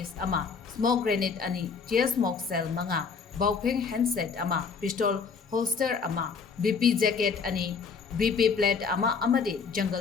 ama smoke grenade ani tear smoke cell manga baupeng handset ama pistol holster ama BP jacket ani BP plate ama amadi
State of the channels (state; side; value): quieter; right; 5.4 dB